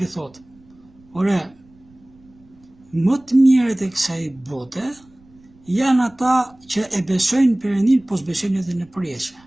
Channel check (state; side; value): noise; right; rumble, 29 dB below the sound